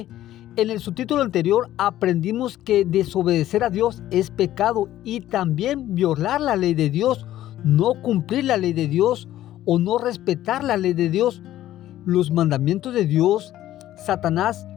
en el subtítulo anterior aprendimos que desobedecer a Dios es pecado y también violar la ley de Dios, no cumplir la ley de Dios o no respetar la ley de Dios. Los mandamientos de Dios, Satanás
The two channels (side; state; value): right; quieter; 13.5 dB